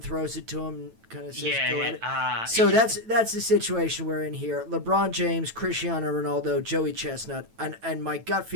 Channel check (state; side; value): late; left; 9.1 ms